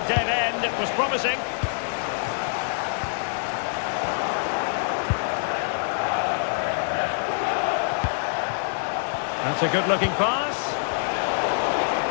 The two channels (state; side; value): silent; right; digital silence